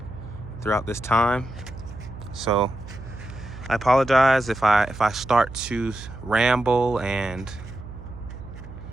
this time. So I apologize if I start to ramble and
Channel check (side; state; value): right; noise; hum, 13 dB below the sound